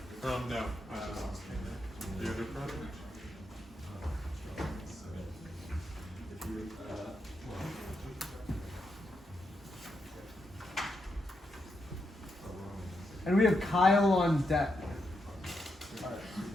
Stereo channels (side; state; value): both; normal; correlation 0.83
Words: No. The other project? And we have Kyle on deck.